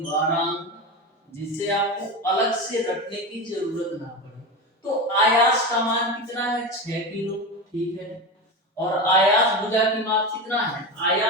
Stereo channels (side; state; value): both; normal; correlation 0.22